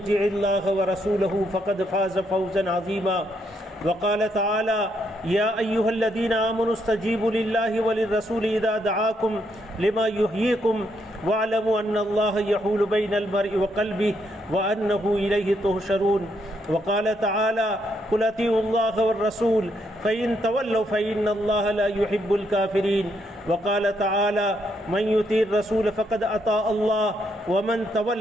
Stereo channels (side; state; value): both; normal; correlation 0.76